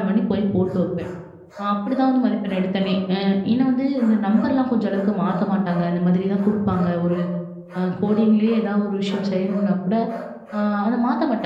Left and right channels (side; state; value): both; identical; correlation 1.00